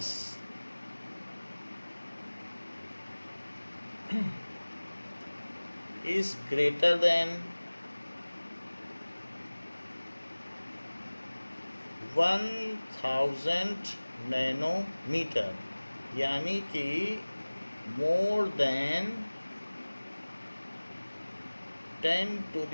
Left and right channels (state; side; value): inverted; both; correlation -1.00